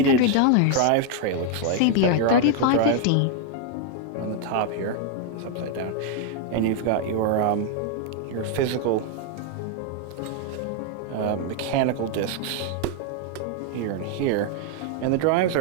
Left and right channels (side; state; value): both; different; correlation 0.00